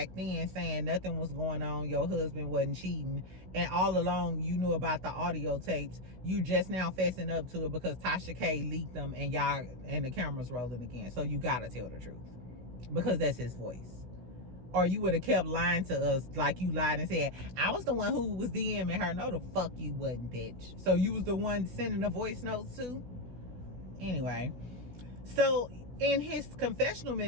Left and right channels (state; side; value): late; left; 16 ms